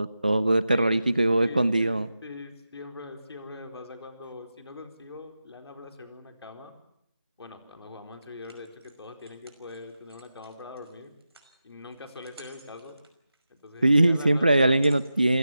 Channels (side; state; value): both; inverted; correlation -0.91